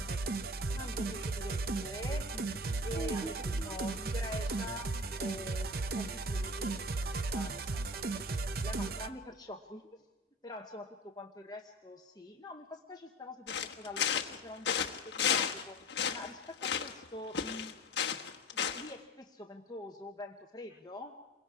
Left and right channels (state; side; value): normal; both; correlation 0.37